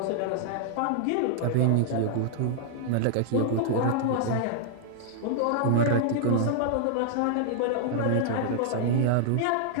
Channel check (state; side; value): different; both; correlation -0.01